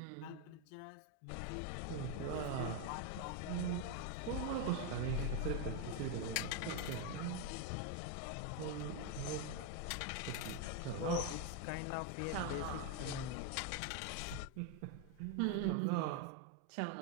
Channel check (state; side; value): different; both; correlation 0.01